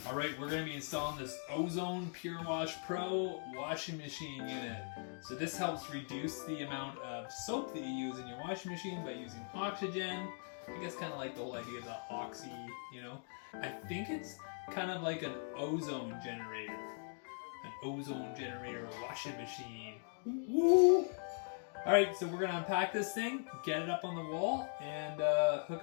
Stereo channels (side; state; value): right; silent; 51 dB below the other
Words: Alright, we're going to be installing this Ozone pureWash Pro washing machine unit. So this helps reduce the amount of soap that you use in your washing machine by using oxygen. I guess kind of like the whole idea of the oxy, you know. I think it's kind of like an ozone generator. An ozone generator washing machine. Woo! Alright, so we're going to unpack this thing, get it up on the wall, and hook